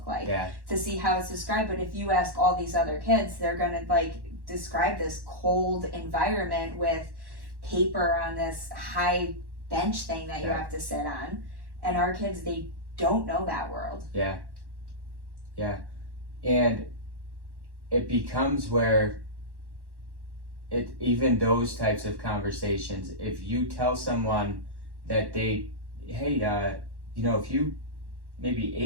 like? Yeah. To see how it's described. But if you ask all these other kids, they're gonna like describe this cold environment with paper on this high bench thing that you have to sit on. And our kids, they don't know that world. Yeah. Yeah. And it becomes where even those types of conversations, if you tell someone that if you maybe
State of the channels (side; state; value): left; late; 1.1 ms